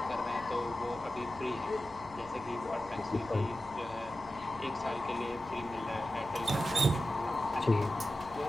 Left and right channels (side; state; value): right; noise; hum, 20 dB below the sound